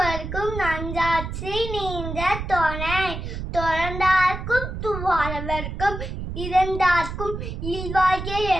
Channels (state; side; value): noise; right; rumble, 6 dB below the sound